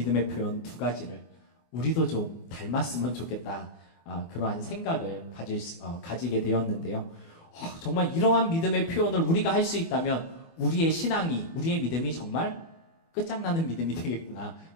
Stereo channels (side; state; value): right; late; 24 ms